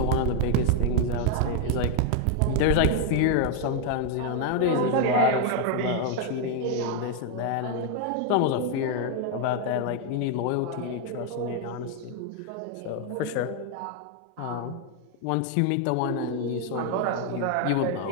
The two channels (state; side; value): different; both; correlation 0.00